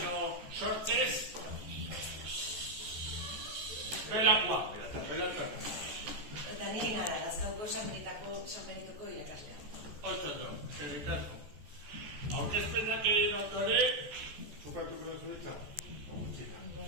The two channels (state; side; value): late; left; 14 ms